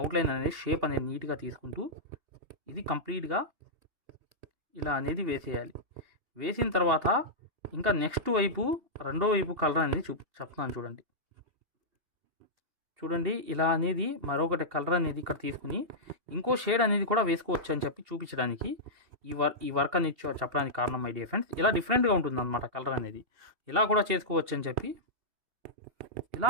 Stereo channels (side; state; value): left; late; 2.7 ms